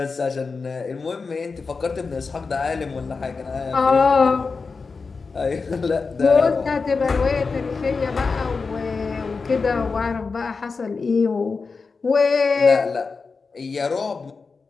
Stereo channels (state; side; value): quieter; right; 4.6 dB